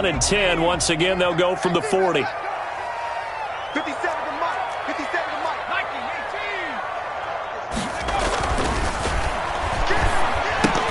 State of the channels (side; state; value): both; identical; correlation 1.00